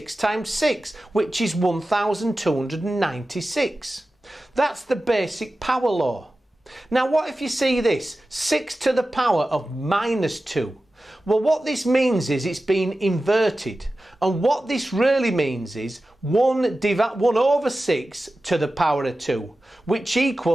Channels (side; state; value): both; normal; correlation 0.95